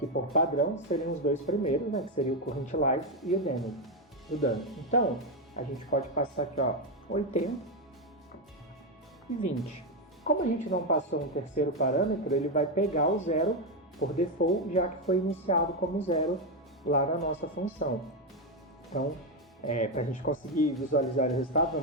por padrão seriam os 2 primeiros, que seria o current life e o dano. Então, a gente pode passar aqui, 80 e 20. Como a gente não passou um terceiro parâmetro, ele vai pegar o 0 por default, já que foi iniciado como 0 lá na nossa função. Então, para a gente conseguir visualizar o resultado,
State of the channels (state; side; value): normal; both; correlation 0.07